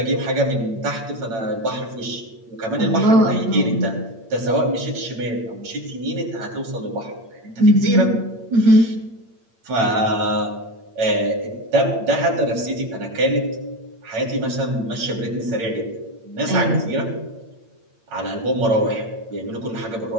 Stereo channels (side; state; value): left; late; 8.8 ms